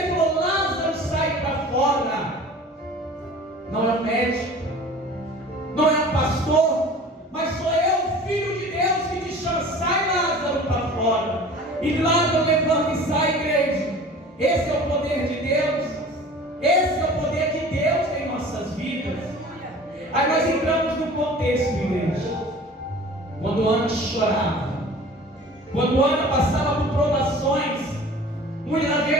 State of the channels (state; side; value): normal; both; correlation 0.43